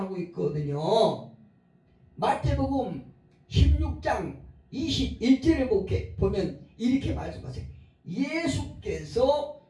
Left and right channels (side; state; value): both; identical; correlation 1.00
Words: 있거든요. 마태복음 16장 21절에 보면 이렇게 말씀하세요. 예수께서